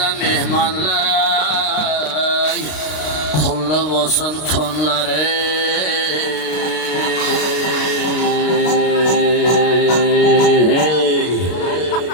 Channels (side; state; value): right; late; 33 ms